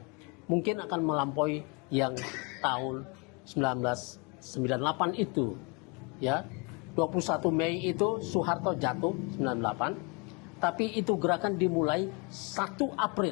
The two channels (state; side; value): quieter; right; 31.6 dB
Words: Mungkin akan melampaui yang tahun 1998 itu. Ya, 21 Mei itu Soeharto jatuh 98, tapi itu gerakan dimulai 1